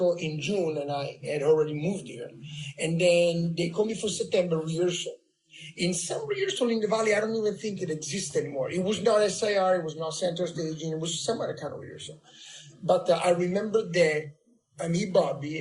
in June, and I had already moved here. And then they called me for September rehearsal. In some rehearsal in the Valley, I don't even think it exists anymore. It was not SIR, it was not center staging, it was some other kind of rehearsal. But I remember that me, Bobby,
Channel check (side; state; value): both; identical; correlation 1.00